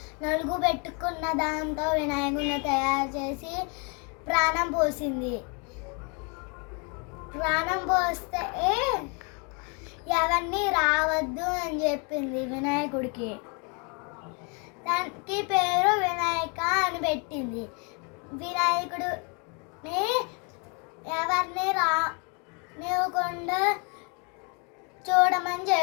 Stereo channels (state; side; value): quieter; right; 34.7 dB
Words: నలుగు పెట్టుకున్న దాంతో వినాయకుడిని తయారు చేసి ప్రాణం పోసింది. ప్రాణం పోస్తే ఎవరిని రావద్దు అని చెప్పింది వినాయకుడికి. దానికి పేరు వినాయక అని పెట్టింది. వినాయకుడిని ఎవరిని రానివ్వకుండా చూడమని